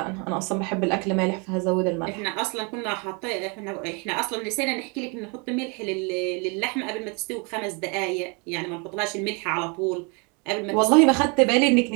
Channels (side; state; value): left; quieter; 32.4 dB